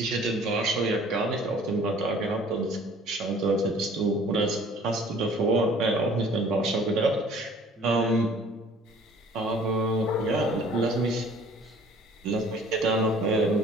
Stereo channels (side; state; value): both; normal; correlation 0.52